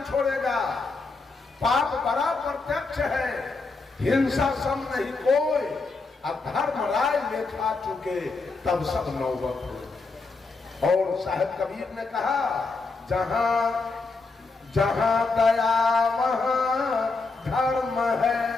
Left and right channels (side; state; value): right; quieter; 3.9 dB